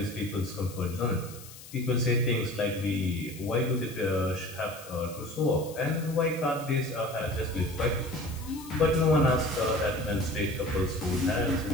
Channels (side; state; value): left; noise; hiss, 17 dB below the sound